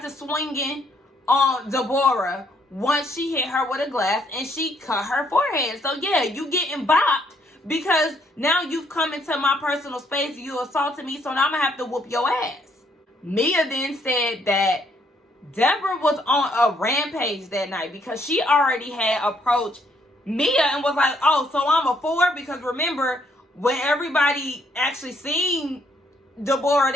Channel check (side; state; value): both; normal; correlation 0.70